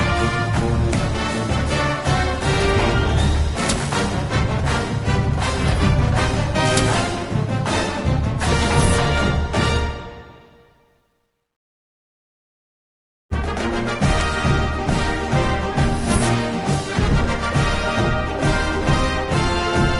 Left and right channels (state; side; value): identical; both; correlation 1.00